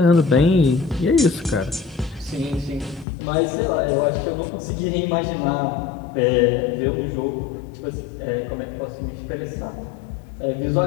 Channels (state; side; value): drops out; right; at 3.1 s